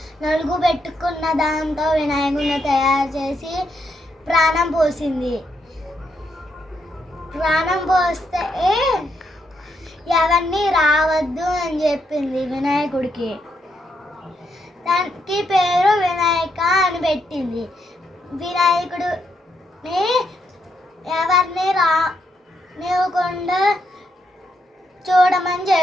నలుగు పెట్టుకున్న దాంతో వినాయకుడిని తయారు చేసి ప్రాణం పోసింది. ప్రాణం పోస్తే ఎవరిని రావద్దు అని చెప్పింది వినాయకుడికి. దానికి పేరు వినాయక అని పెట్టింది. వినాయకుడిని ఎవరిని రానివ్వకుండా చూడమని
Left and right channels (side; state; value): both; normal; correlation 0.79